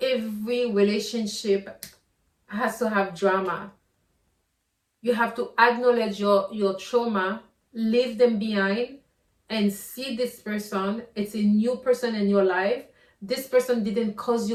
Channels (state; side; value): identical; both; correlation 1.00